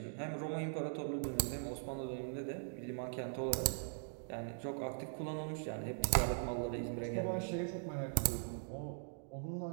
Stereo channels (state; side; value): silent; left; digital silence